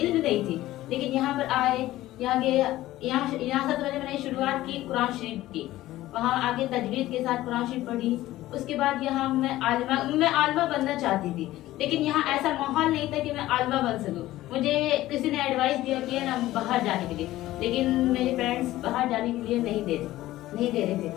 نہیں تھی، لیکن یہاں پر آئے یہاں سب سے پہلے میں نے شروعات کی قرآن شریف کی، وہاں آگے تجوید کے ساتھ قرآن شریف پڑھی، اس کے بعد یہاں میں عالمہ بننا چاہتی تھی، لیکن یہاں ایسا ماحول نہیں تھا کہ میں عالمہ بن سکوں۔ مجھے کسی نے ایڈوائس دیا کہ نا باہر جانے کے لیے، لیکن میرے پیرنٹس باہر جانے کے لیے نہیں دے رہے تھے،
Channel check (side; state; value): right; quieter; 15.8 dB